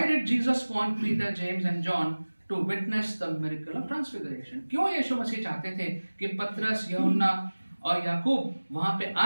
did Jesus want Peter, James and John to witness the miracle of transfiguration? क्यों यीशु मसीह चाहते थे कि पतरस, यूहन्ना और याकूब वहां पे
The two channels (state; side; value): inverted; both; correlation -1.00